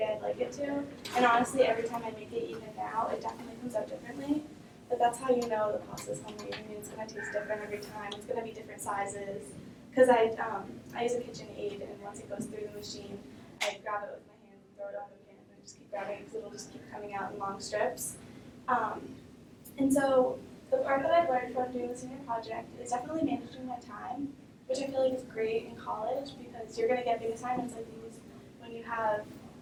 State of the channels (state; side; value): identical; both; correlation 1.00